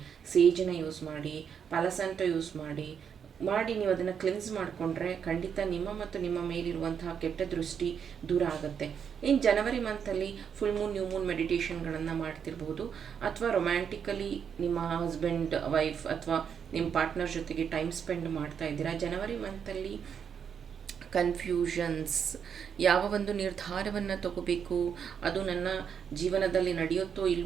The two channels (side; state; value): left; quieter; 7.4 dB